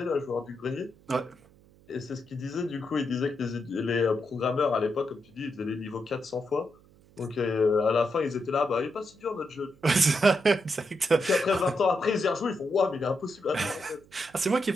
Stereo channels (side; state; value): right; noise; hum, 27 dB below the sound